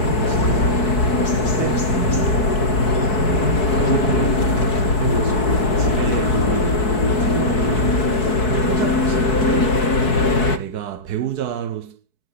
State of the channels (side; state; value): right; late; 4.7 ms